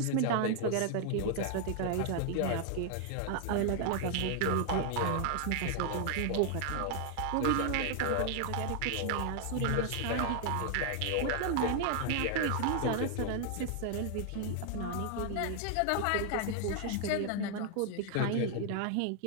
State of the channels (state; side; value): different; both; correlation 0.00